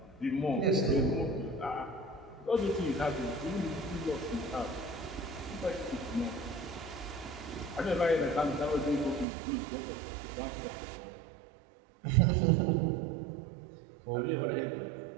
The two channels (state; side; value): drops out; left; at 9.2 s